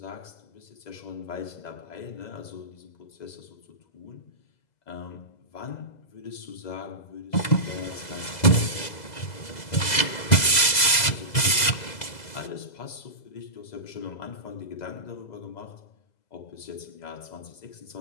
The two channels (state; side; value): late; right; 2.0 ms